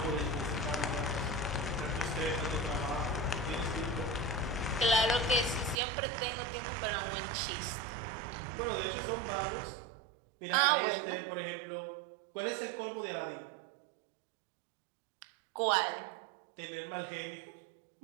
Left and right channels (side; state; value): left; drops out; at 5.8 s